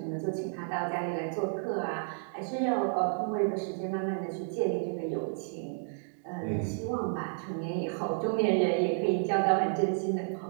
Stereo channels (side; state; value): left; silent; digital silence